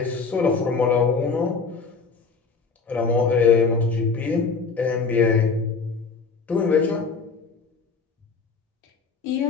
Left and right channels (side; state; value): right; quieter; 4.9 dB